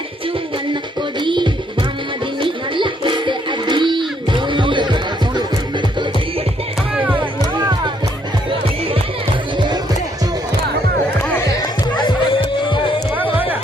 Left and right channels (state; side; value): normal; both; correlation 0.70